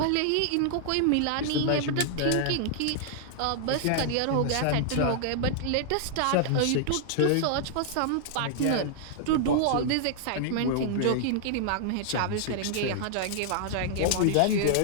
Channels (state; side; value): different; both; correlation -0.01